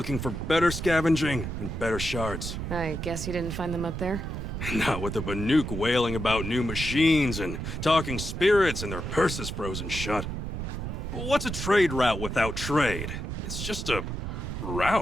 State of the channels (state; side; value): noise; right; rumble, 5 dB below the sound